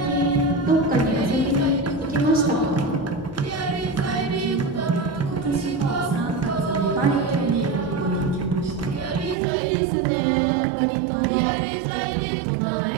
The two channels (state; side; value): drops out; left; at 9.3 s